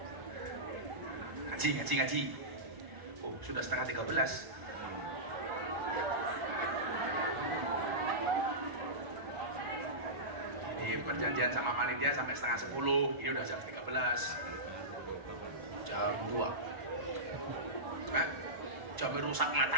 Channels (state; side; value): late; left; 1.4 ms